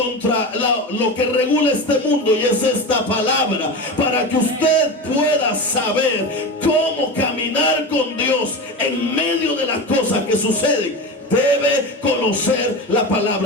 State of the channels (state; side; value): normal; both; correlation 0.25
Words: lo que regula este mundo, y es esta palabra, para que usted pueda saber cómo caminar con Dios en medio de las cosas que suceden. Debe conocer la